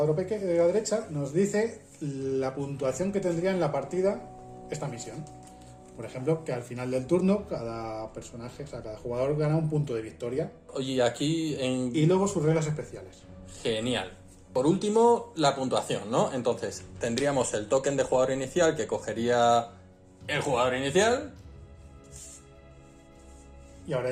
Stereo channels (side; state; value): both; identical; correlation 1.00